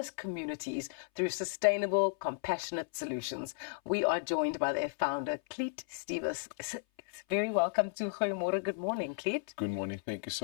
communities through sustainable, compassionate solutions. We are joined by their founder, Clete Stevis. Very welcome to Goeiemôre. Good morning, Clete. Good morning. Thank you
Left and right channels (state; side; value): silent; right; 55 dB below the other